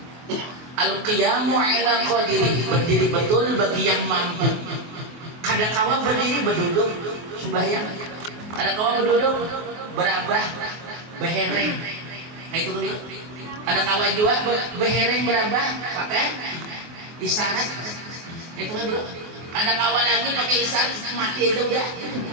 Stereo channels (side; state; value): left; late; 23 ms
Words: Al-qiyamu ala qadiri, berdiri betul bagi yang mampu. Kadangkala berdiri berduduk sembahyang. Kadangkala berduduk berabah behereng. Kayak itu dulu. Kadangkala juga behereng berabah pakai isyarat. Itu dulu. Kadangkala lagi pakai isyarat mati aja udah.